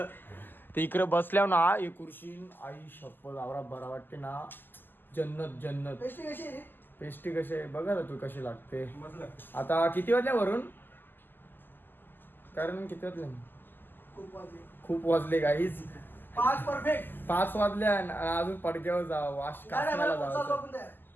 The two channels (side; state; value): right; late; 0.092 ms